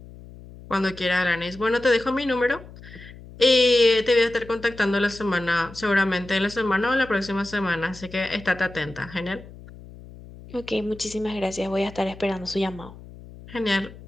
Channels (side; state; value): left; noise; hum, 18 dB below the sound